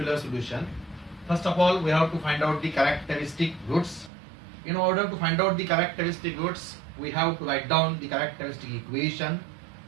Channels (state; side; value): drops out; left; at 4.1 s